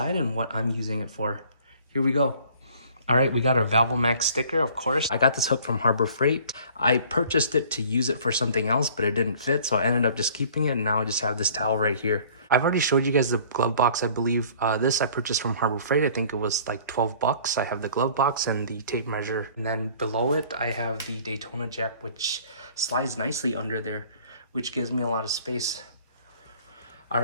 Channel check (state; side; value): inverted; both; correlation -0.52